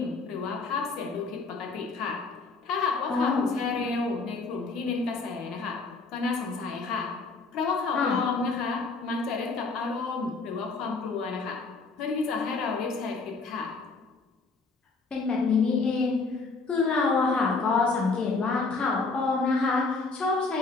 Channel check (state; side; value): quieter; right; 4.0 dB